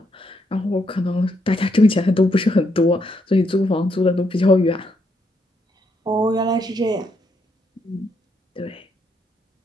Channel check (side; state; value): both; normal; correlation 0.76